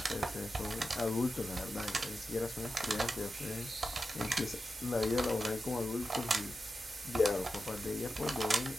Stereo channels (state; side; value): normal; both; correlation 0.90